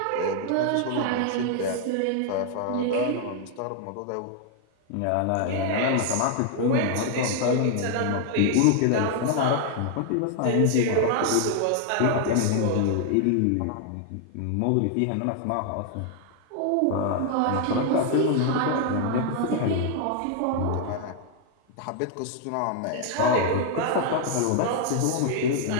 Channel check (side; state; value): both; different; correlation 0.00